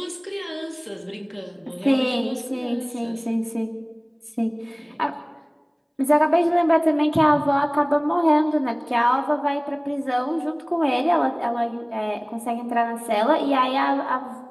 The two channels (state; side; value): identical; both; correlation 1.00